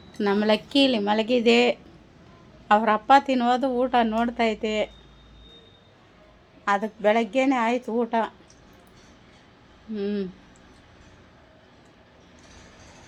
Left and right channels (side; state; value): both; identical; correlation 1.00